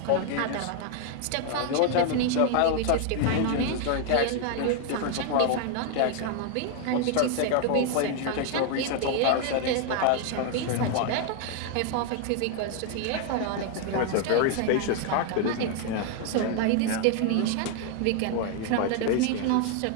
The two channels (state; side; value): different; both; correlation 0.00